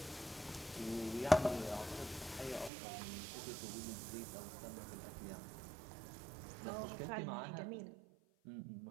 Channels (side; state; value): left; drops out; at 2.7 s